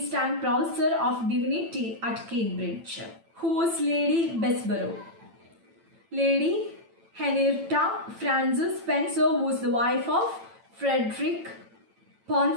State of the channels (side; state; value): left; late; 9.0 ms